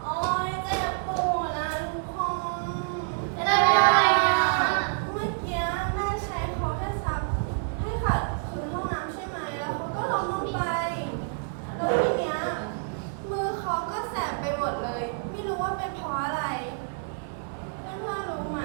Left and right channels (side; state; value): left; silent; digital silence